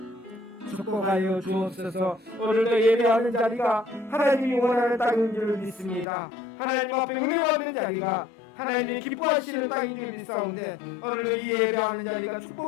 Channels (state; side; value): drops out; right; at 6.1 s